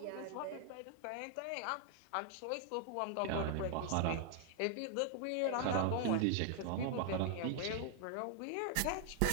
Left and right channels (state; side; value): different; both; correlation 0.00